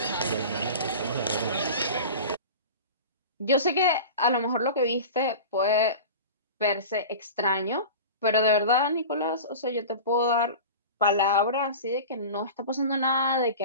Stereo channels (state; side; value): inverted; both; correlation -0.33